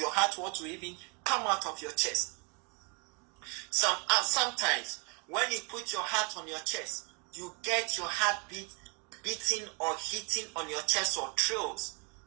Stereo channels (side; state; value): left; quieter; 34.3 dB